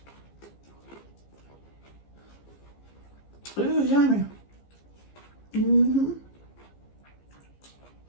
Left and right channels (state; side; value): late; right; 15 ms